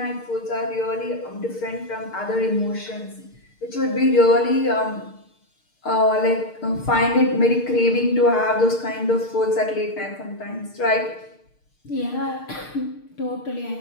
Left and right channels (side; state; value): right; late; 6.6 ms